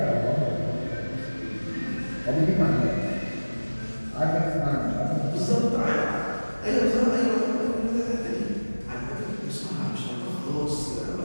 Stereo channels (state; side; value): inverted; both; correlation -1.00